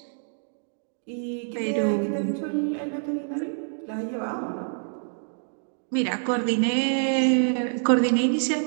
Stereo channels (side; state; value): left; silent; digital silence